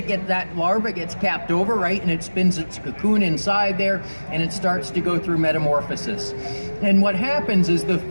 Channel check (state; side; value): inverted; both; correlation -1.00